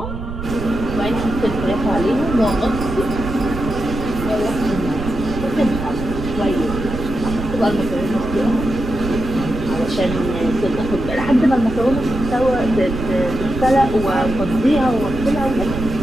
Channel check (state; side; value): noise; right; rumble, 7 dB below the sound